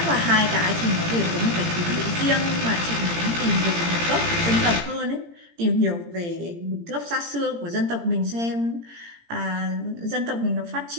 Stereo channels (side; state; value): left; late; 17 ms